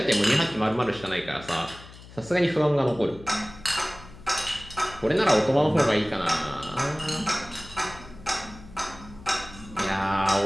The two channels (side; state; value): left; noise; hum, 18 dB below the sound